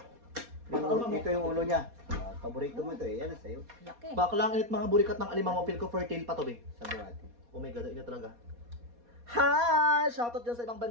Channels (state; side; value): late; left; 4.2 ms